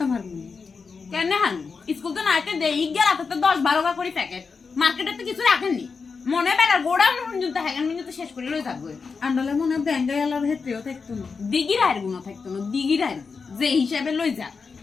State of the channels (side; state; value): right; quieter; 5.1 dB